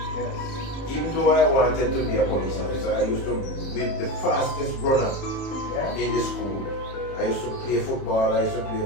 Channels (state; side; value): late; right; 30 ms